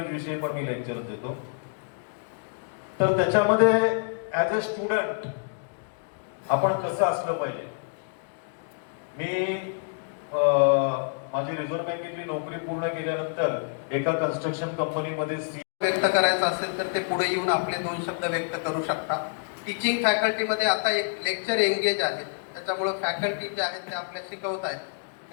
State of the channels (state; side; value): silent; right; digital silence